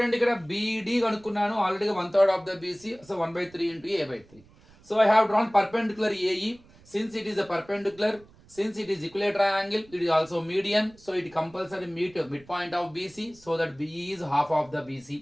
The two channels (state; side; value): noise; right; rumble, 26 dB below the sound